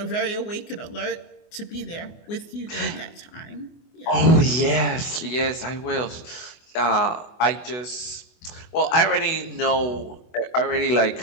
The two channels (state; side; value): late; right; 24 ms